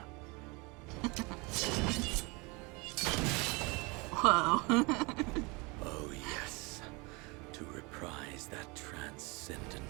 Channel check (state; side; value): quieter; left; 27.5 dB